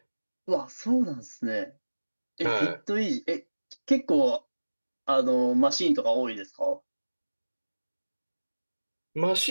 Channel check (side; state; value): both; inverted; correlation -1.00